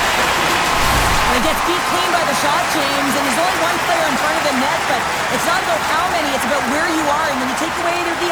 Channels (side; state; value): both; identical; correlation 1.00